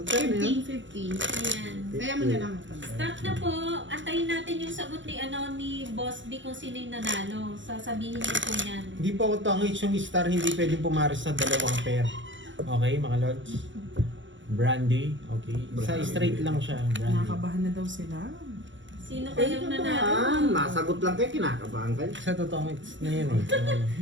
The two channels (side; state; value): left; late; 0.55 ms